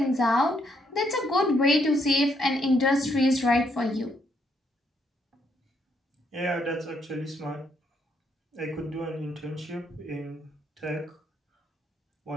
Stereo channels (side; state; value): both; normal; correlation 0.74